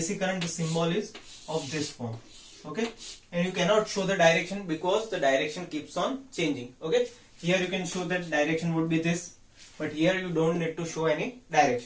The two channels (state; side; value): identical; both; correlation 1.00